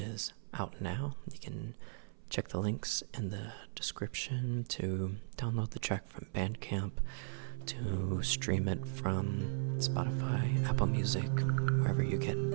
out now. You can check the links in the description to download the track from Bandcamp, to stream it from Spotify, Apple Music, wherever you get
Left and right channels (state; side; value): silent; left; 53 dB below the other